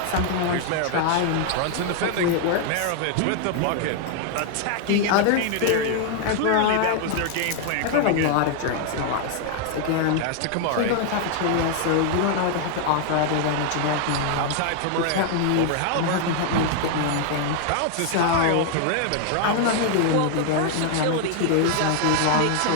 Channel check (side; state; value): both; different; correlation 0.00